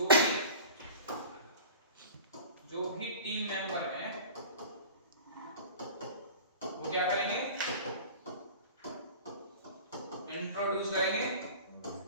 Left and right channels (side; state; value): both; inverted; correlation -0.39